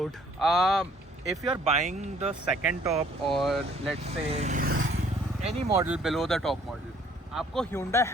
If you are buying the second top और let's say any model below the top model, आपको Hyundai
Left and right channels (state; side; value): normal; both; correlation 0.60